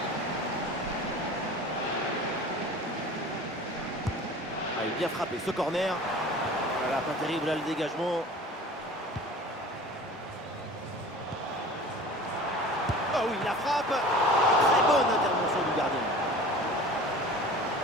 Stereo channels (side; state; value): both; normal; correlation 0.41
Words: Il est bien frappé ce corner. Voilà, pas terrible là le dégagement. Oh oui, la frappe. Très bonne intervention du gardien.